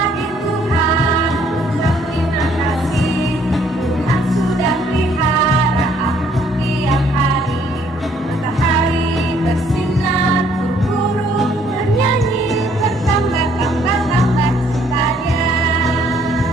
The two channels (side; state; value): both; normal; correlation 0.64